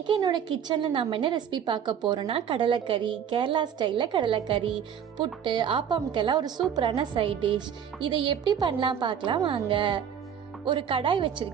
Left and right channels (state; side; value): quieter; left; 8.4 dB